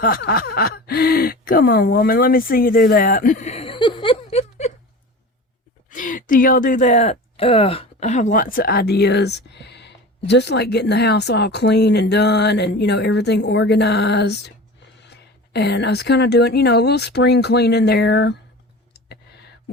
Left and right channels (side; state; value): both; normal; correlation 0.34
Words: ha ha, come on, woman, let me see you do that. Do y'all do that? I have lots of ideas. Just like getting the house all clean and done and, you know, everything organized. And I was kind of doing, you know, a little spring cleaning there.